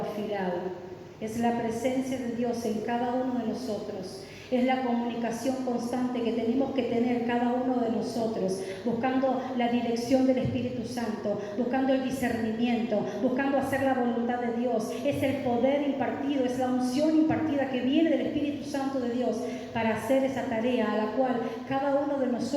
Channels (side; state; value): both; identical; correlation 1.00